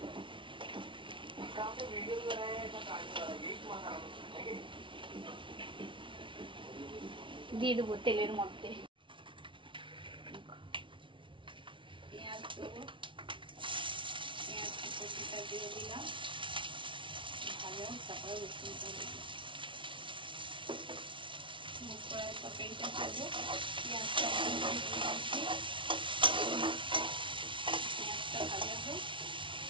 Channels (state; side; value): late; left; 0.25 ms